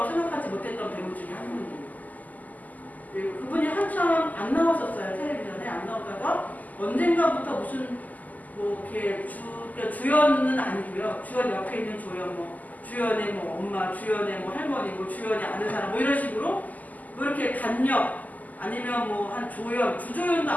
생각하지 못했던 배우 중에 한 분이에요. 그분이 한참 안 나왔었어요. 텔레비전에 안 나오다가 언젠가부터 무슨 뭐 이렇게 주연은 아니고요. 주연 옆에 있는 조연 뭐 주연의 뭐 엄마, 주연의 뭐 할머니, 뭐 주연이 아는 사람 뭐 이런 식으로 뭐 이렇게 단역 아니면 뭐 한 조연, 주조연도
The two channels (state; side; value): late; right; 0.080 ms